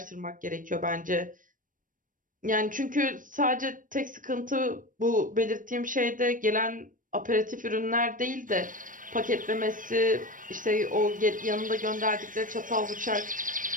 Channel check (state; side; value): late; left; 0.38 ms